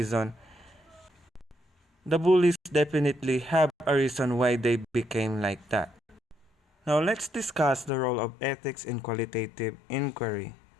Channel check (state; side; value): drops out; right; at 7.9 s